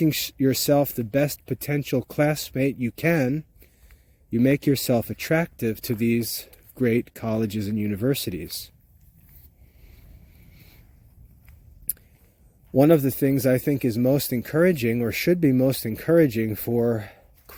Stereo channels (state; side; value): identical; both; correlation 1.00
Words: yourself the best potential classmate you can, you make yourself attractive to these great colleges and universities. One of the things I think is most encouraging, or should be most encouraging for